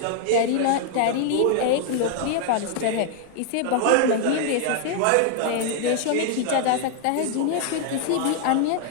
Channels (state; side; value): different; both; correlation 0.00